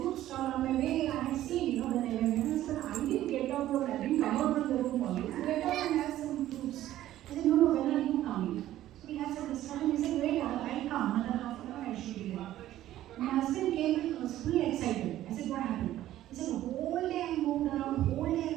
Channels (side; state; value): left; quieter; 13.6 dB